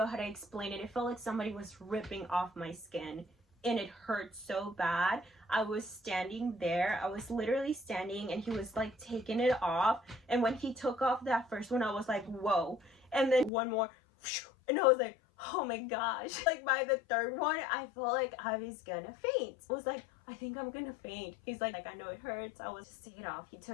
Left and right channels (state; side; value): drops out; right; at 13.5 s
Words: how to explain it. It felt like somebody was ripping off my skin and it hurt so bad. I was standing there. I was literally standing and he was like taking it off. And when he took off that first one, I was like, whoa. And then one more, and I was like, oh my gosh. Like by the third one, I felt like I was gonna faint. I was like, I think I'm gonna faint. He's like, I know it hurts. I was just take it off. He